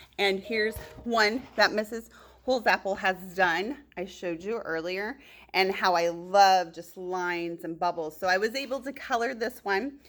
and here's one that Mrs. Holsapple has done. I showed you earlier, and how I love just lines and bubbles. So I was able to color this one.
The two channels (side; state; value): both; identical; correlation 1.00